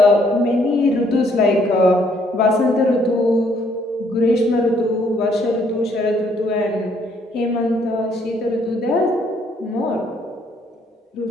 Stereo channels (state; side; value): normal; both; correlation 0.67